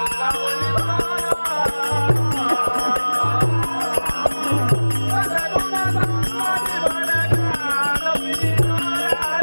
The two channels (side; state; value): both; inverted; correlation -1.00